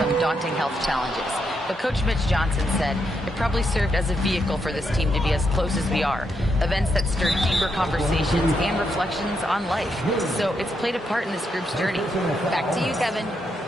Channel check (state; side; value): normal; both; correlation 0.80